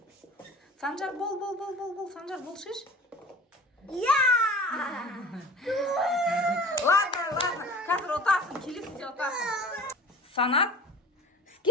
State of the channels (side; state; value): both; normal; correlation 0.40